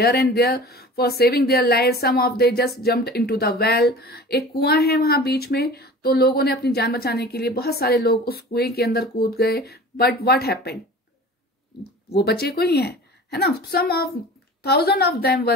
and there for saving their lives. Some of they just jumped into the well. एक कुआं है वहां बीच में, तो लोगों ने अपनी जान बचाने के लिए बहुत सारे लोग उस कुएं के अंदर कूद गए. बट व्हाट हैपेंड, वो बचे कोई है ना. some of thousands of them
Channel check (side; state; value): both; normal; correlation 0.40